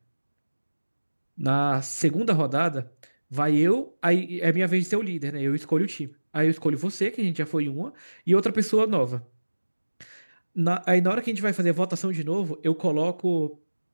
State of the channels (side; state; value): both; inverted; correlation -1.00